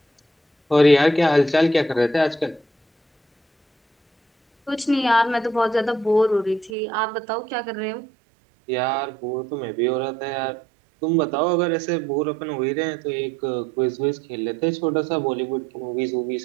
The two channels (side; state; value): left; drops out; at 6.7 s